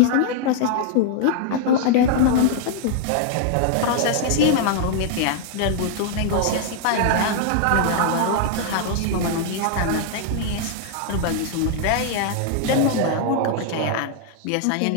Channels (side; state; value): both; different; correlation 0.00